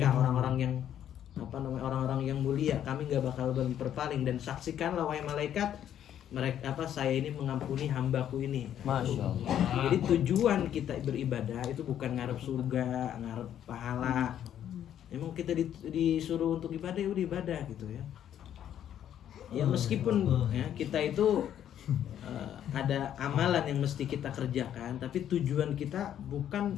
orang-orang yang orang-orang yang mulia, kami enggak bakal berpaling, dan saksikanlah wahai malaikat saya ini mengampuni hambaku ini. Masya Allah. Jadi tujuan kita beribadah itu bukan ngarep surga, ngarep pahala. Emang kita disuruh untuk ibadah, ya udah ibadah gitu ya. Ya meskipun ya kita itu ada amalan yang mesti kita kerjakan, tapi tujuan kita bukan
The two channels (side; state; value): right; quieter; 10.3 dB